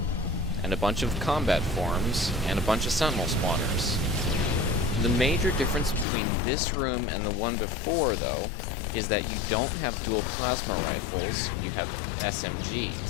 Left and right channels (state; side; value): drops out; right; at 6.1 s